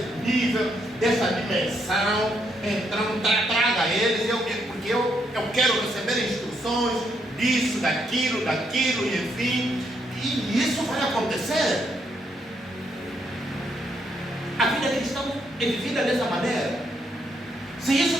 nível, dessa dimensão. Então traga eles, porque eu quero receber instruções disso, daquilo, e enfim, e isso vai acontecer. A vida cristã é vivida dessa maneira. Se isso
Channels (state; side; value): normal; both; correlation 0.75